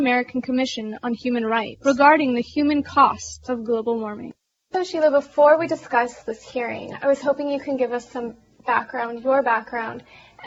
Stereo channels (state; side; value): identical; both; correlation 1.00